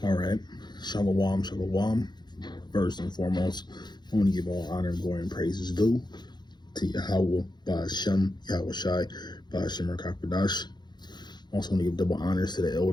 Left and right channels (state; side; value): late; right; 0.21 ms